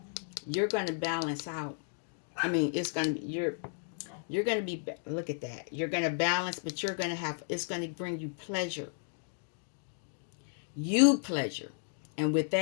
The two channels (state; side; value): silent; right; digital silence